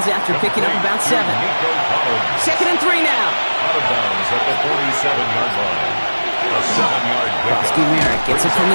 after picking up about 7. 2nd and 3 now. Out of bounds at the 47-yard line. A 7-yard pickup. Krosky-Merritt gets it from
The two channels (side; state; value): both; inverted; correlation -1.00